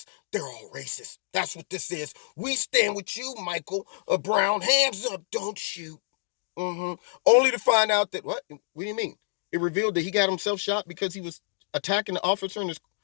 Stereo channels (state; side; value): silent; right; digital silence